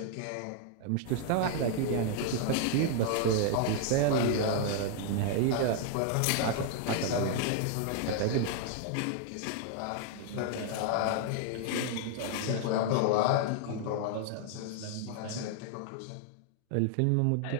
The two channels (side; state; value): both; different; correlation 0.00